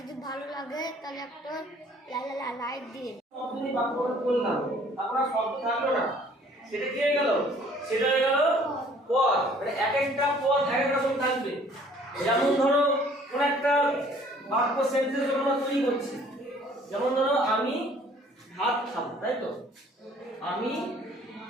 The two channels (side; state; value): both; normal; correlation 0.56